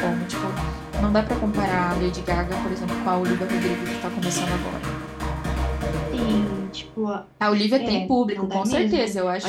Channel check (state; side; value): identical; both; correlation 1.00